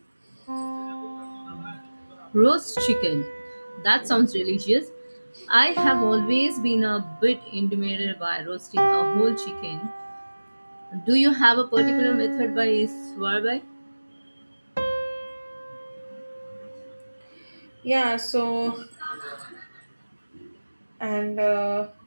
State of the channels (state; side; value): inverted; both; correlation -1.00